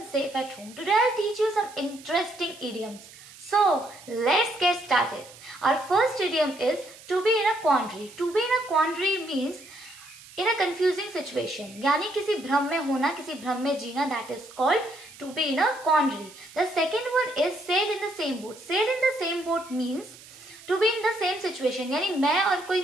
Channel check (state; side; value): noise; right; hiss, 20 dB below the sound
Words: safe at home. Today I'll teach you some interesting idioms. So let's get started. Our first idiom is to be in a quandary. To be in a quandary means in a confusing situation. यानी किसी भ्रम में होना, किसी भ्रम में जीना. That is called to be in a quandary. The second one is sail in the same boat. Sail in the same boat means to be in the same situation. यानी मैं और